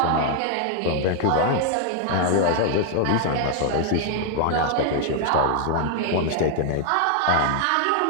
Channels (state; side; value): different; both; correlation 0.00